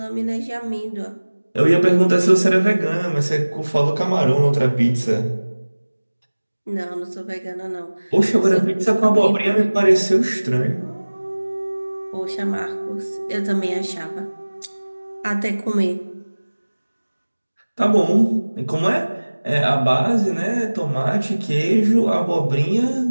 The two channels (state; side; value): inverted; both; correlation -1.00